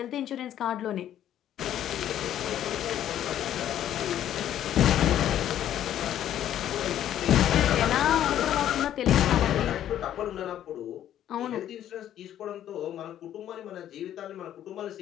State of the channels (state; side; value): quieter; right; 11.2 dB